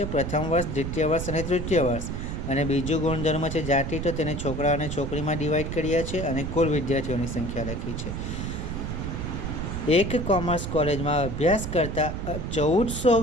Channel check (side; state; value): right; noise; rumble, 4 dB below the sound